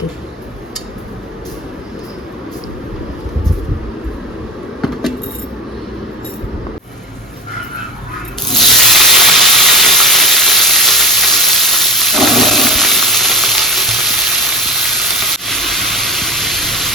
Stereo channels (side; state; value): both; normal; correlation 0.28